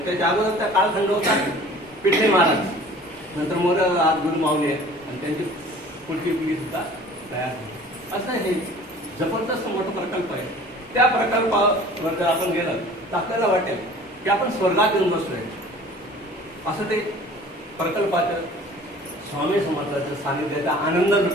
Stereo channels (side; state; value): both; normal; correlation 0.47